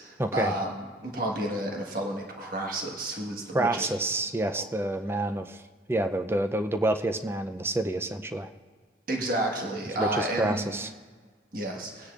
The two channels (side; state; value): both; normal; correlation 0.54